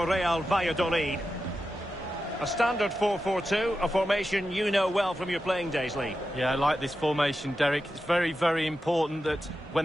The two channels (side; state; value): both; normal; correlation 0.90